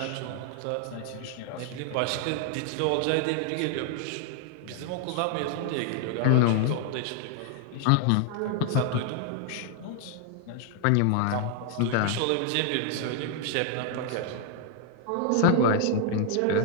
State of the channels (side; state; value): both; different; correlation 0.00